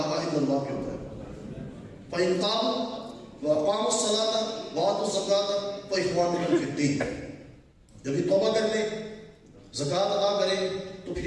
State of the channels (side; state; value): both; identical; correlation 1.00